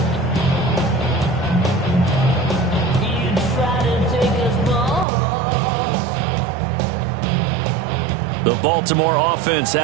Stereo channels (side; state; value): left; drops out; at 5.1 s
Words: The Baltimore offense